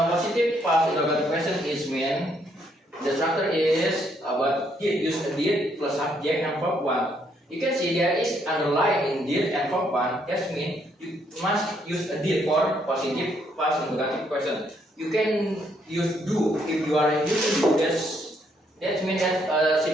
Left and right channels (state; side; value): normal; both; correlation 0.72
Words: past interrogative question is when the structure is about did, use a did plus subject and verb one. You can see there is underline in did and verb one. That means you must use a did for positive past interrogative question. You can use do if you are using do. That means that's a